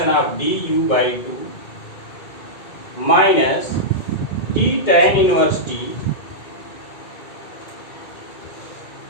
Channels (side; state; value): right; late; 2.2 ms